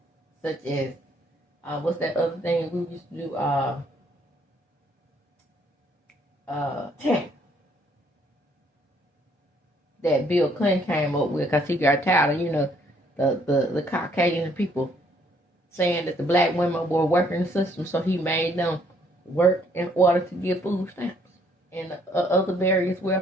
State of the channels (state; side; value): normal; both; correlation 0.66